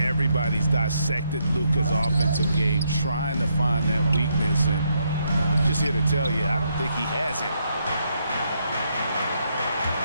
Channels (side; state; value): both; inverted; correlation -0.77